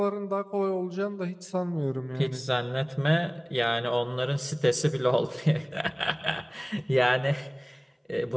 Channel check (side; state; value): both; identical; correlation 1.00